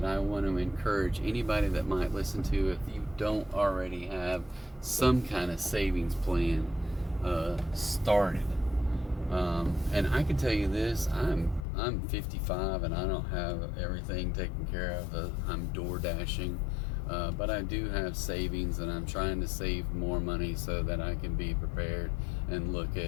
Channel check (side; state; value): right; drops out; at 11.7 s